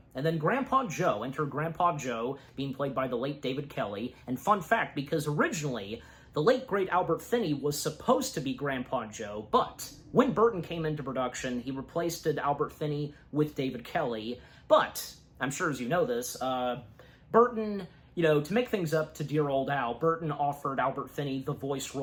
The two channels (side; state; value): both; identical; correlation 1.00